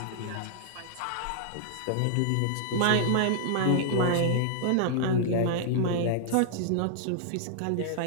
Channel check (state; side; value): different; both; correlation -0.01